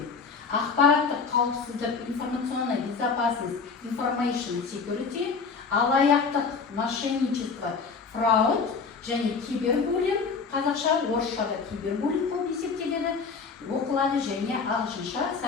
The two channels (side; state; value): right; quieter; 5.1 dB